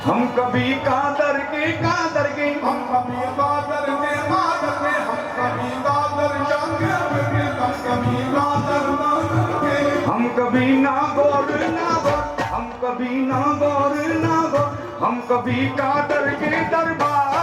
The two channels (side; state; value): both; identical; correlation 1.00